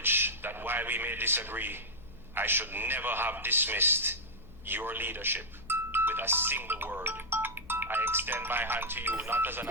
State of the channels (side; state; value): left; noise; hum, 19 dB below the sound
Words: that while we may disagree, I should never have dismissed your leadership with a single word. I extend my hand to you not as an